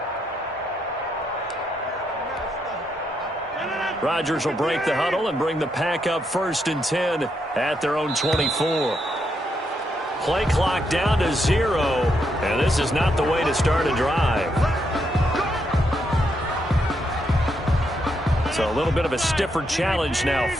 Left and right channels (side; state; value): both; normal; correlation 0.79